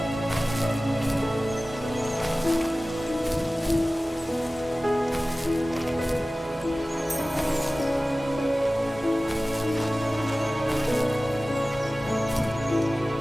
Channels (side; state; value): both; normal; correlation 0.97